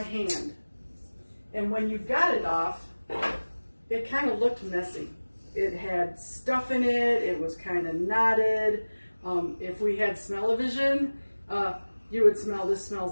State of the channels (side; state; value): both; inverted; correlation -1.00